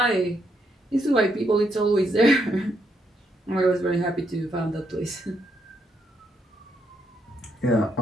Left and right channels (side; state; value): both; normal; correlation 0.77